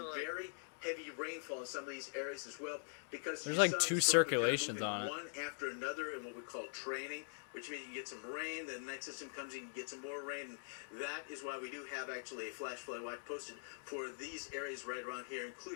very heavy rainfall in some of these areas as well, because there's like 2 circulations on it. One after another in what we call training, which means you get some rain, then the next system comes in, you get some more rain. And that is why we do have actually a flash flood watch posted for these areas right around here,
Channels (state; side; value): silent; right; digital silence